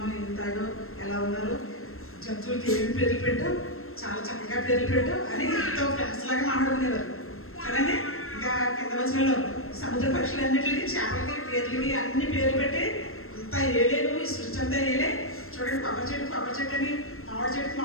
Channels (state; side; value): late; right; 0.62 ms